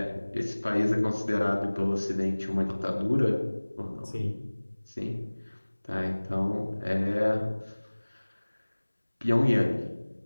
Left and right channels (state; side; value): inverted; both; correlation -1.00